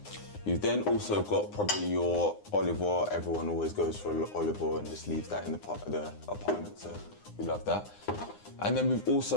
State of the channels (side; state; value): right; late; 9.7 ms